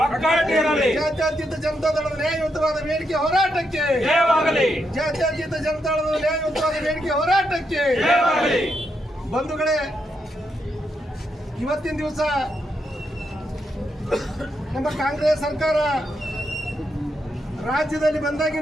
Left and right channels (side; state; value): both; normal; correlation 0.81